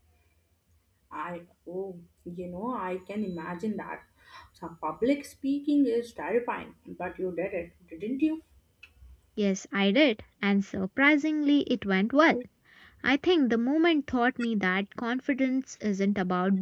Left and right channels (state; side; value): identical; both; correlation 1.00